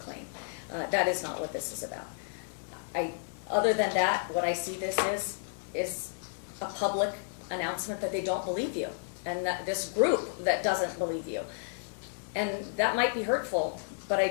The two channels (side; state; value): right; silent; 57 dB below the other